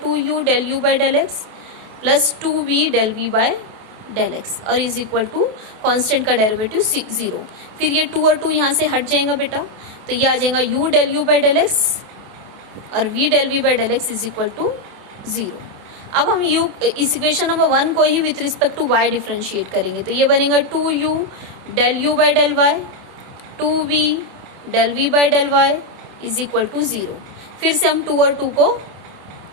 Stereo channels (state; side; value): late; left; 28 ms